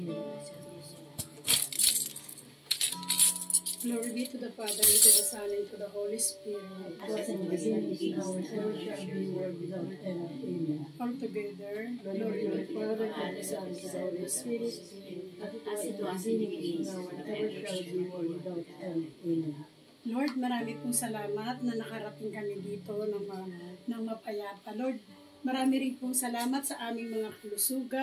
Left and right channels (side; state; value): both; identical; correlation 1.00